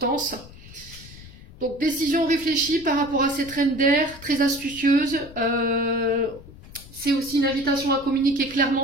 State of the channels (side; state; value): left; noise; rumble, 18 dB below the sound